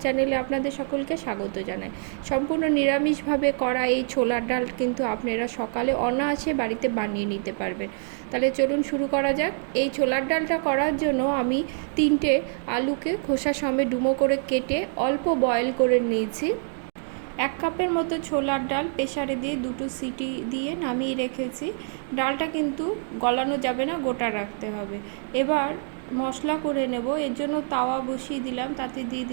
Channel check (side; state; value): left; silent; 61 dB below the other